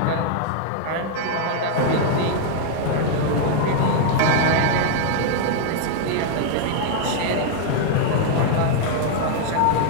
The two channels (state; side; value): different; both; correlation 0.00